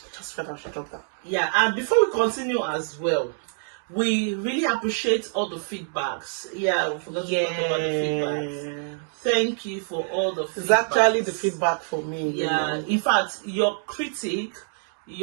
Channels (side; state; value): left; silent; digital silence